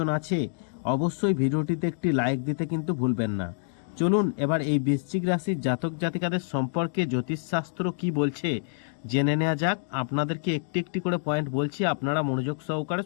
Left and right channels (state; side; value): silent; right; digital silence